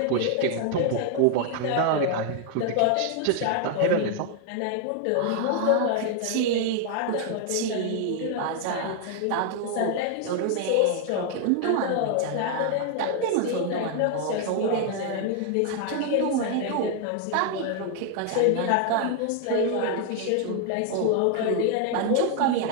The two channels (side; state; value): both; different; correlation 0.00